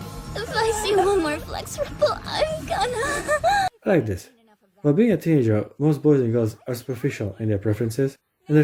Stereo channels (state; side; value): identical; both; correlation 1.00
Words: If I see one more flex ripple, I'm gonna... I like this. While being a teenager, most boys and girls are superficial in their preferences, and the